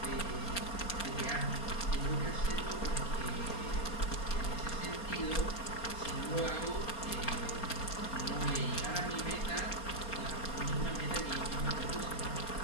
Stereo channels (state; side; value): late; right; 4.3 ms